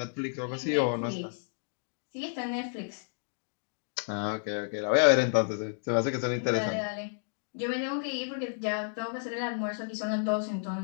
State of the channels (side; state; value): right; silent; digital silence